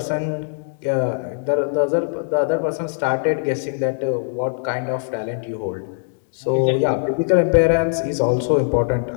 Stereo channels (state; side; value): silent; right; digital silence